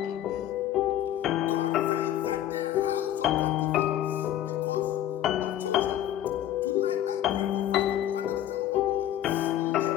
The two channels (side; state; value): right; quieter; 11.9 dB